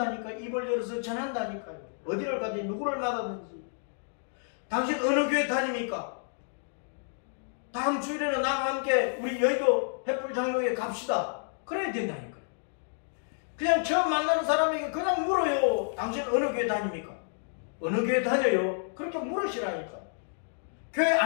입을 열어서 전한다니까요. 어디를 가든지 누구를 만나든지. 당신 어느 교회 다닙니까? 다음 주일에는 나와 함께 우리 여의도 횃불장로에 갑시다. 그래야 된다니까요. 그냥 처음 만나는 사람에게 그냥 물어요. 당신 어느 교회 다닙니까? 어느 교회 다녀요? 그렇게 물으시라니까. 교회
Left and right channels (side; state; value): right; silent; digital silence